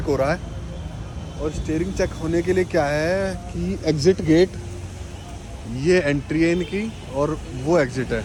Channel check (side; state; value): both; identical; correlation 1.00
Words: हो रहा है, और स्टीयरिंग चेक होने के लिए क्या है कि एग्जिट गेट ये एंट्री है इनकी और वो एग्जिट है,